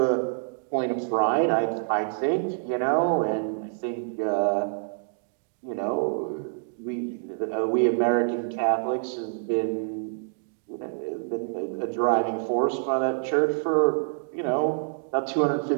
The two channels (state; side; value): silent; left; digital silence